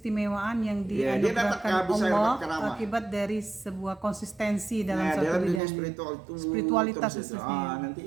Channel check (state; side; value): drops out; left; at 5.6 s